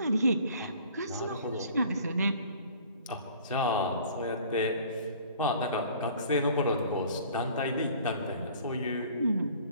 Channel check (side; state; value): both; inverted; correlation -0.50